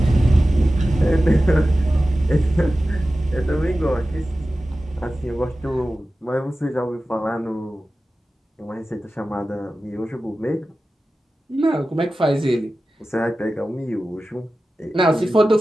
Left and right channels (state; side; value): normal; both; correlation 0.95